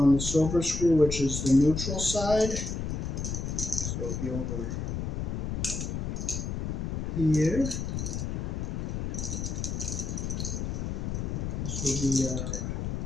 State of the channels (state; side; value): noise; left; rumble, 2 dB below the sound